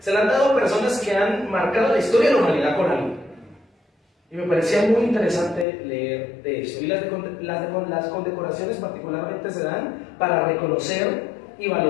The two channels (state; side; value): drops out; right; at 5.7 s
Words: la han dado a personas que han marcado la historia de la humanidad con algo. Y me parecía muy interesante leer de eso. Y las condecoraciones particularmente se dan para reconocer y